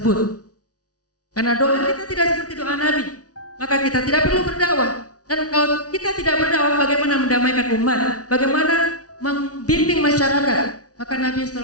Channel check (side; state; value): right; late; 0.68 ms